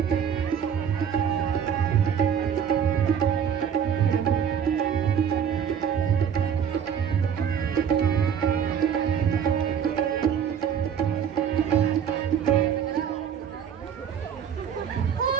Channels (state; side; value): quieter; left; 8.1 dB